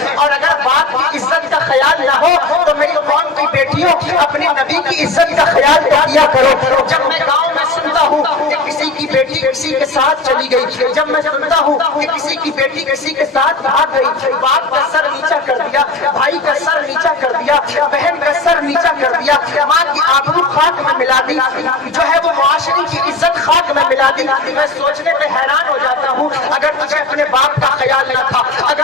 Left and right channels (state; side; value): quieter; right; 3.6 dB